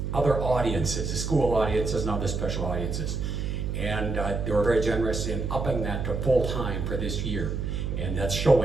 other audiences, the school audiences and other special audiences. And they were very generous in upping that to full-time for this year. And that's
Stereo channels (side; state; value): right; noise; hum, 2 dB below the sound